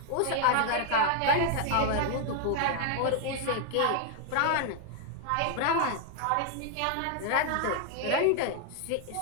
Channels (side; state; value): both; different; correlation 0.00